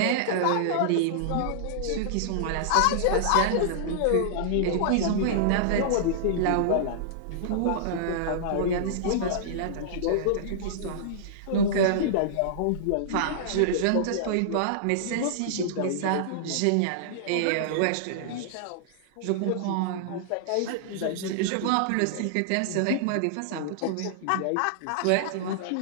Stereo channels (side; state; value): both; different; correlation -0.02